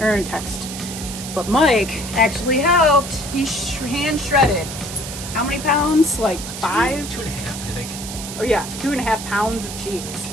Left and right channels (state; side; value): noise; right; hiss, 9 dB below the sound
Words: or in text. But Mike actually helped. He hand shredded. How many pounds? Like 5? 2.5, I think. Oh yeah, 2.5 pounds of cheese.